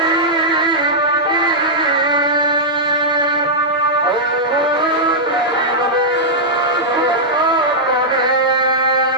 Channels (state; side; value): normal; both; correlation -0.09